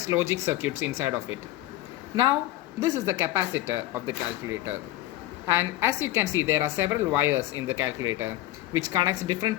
logic circuits inside of it. Now this is the capacitor of the calculator, and as you can see, there are several wires in the calculator which connects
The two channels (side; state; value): right; quieter; 15.5 dB